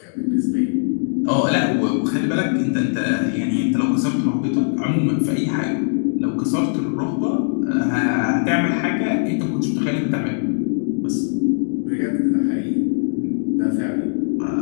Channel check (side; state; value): right; silent; digital silence